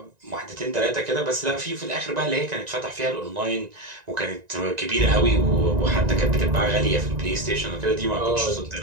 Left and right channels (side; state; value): left; late; 1.9 ms